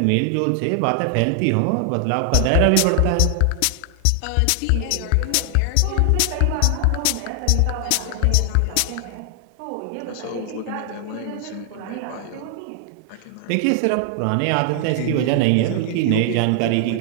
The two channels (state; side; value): different; both; correlation 0.00